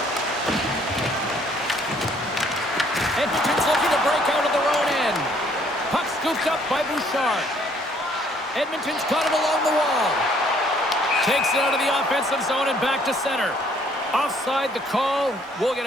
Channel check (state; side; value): normal; both; correlation 0.63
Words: Edmonton's looking to break out of their own end. Puck scooped up by Bouchard. Edmonton's got it along the wall. Takes it out of the offensive zone and back to center. Offside the call. We'll get